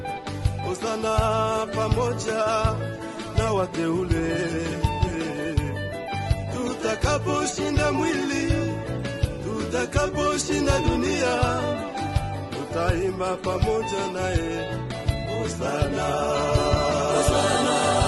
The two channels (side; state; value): both; identical; correlation 1.00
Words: hosana pamoja na wateule. Tutakaposhinda mwili, tutakaposhinda dunia, tutaimba pamoja naye hosana, hosana,